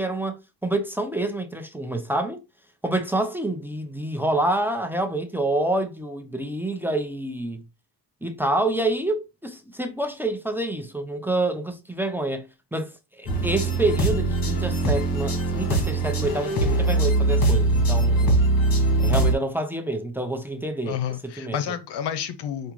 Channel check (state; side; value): normal; both; correlation 0.25